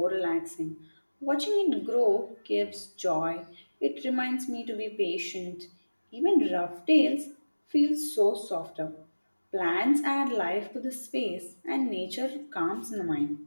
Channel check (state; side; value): inverted; both; correlation -1.00